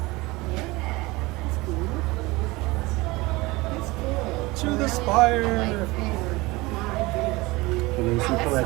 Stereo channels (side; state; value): left; quieter; 22.0 dB